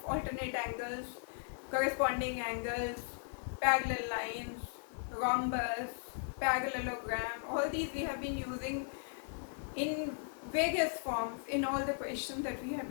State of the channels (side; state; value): right; silent; 53 dB below the other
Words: alternate angles, corresponding angles, parallel lines, rhombus, parallelogram, all these we have been using in various forms in all the questions that we have